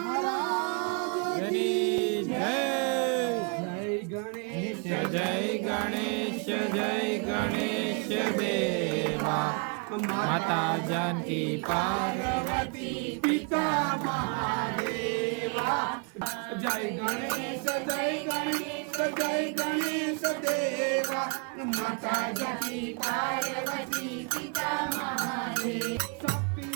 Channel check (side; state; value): left; quieter; 34.3 dB